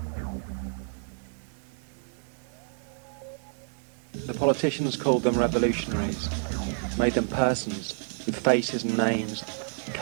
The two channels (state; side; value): silent; left; 59 dB below the other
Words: The politicians called them revolutionaries, made them persons with faces and names,